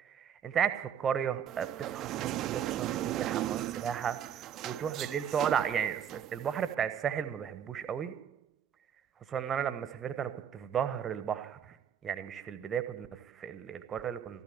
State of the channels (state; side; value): quieter; left; 8.8 dB